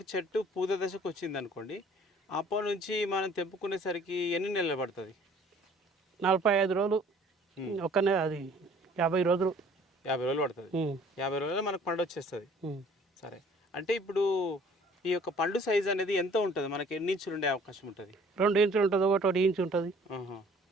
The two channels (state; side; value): normal; both; correlation 0.54